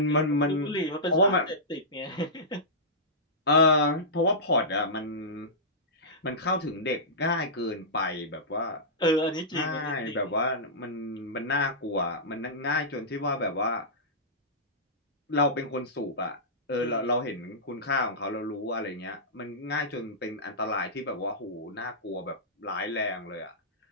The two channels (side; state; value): both; normal; correlation -0.15